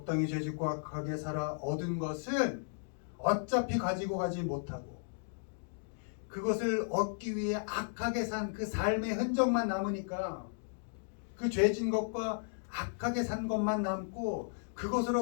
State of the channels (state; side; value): silent; right; digital silence